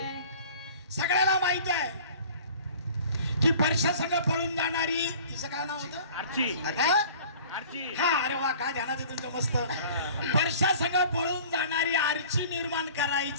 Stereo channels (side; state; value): both; inverted; correlation -0.46